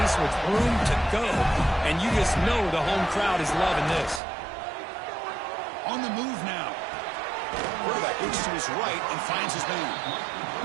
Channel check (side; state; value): left; drops out; at 4.2 s